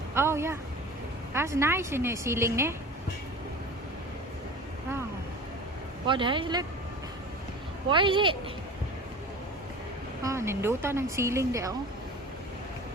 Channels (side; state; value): both; normal; correlation 0.37